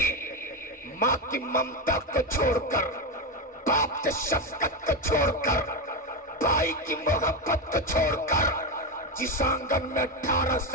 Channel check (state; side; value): normal; both; correlation 0.12